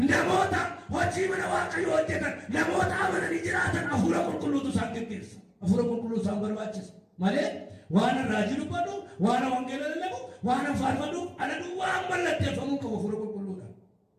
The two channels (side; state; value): both; identical; correlation 1.00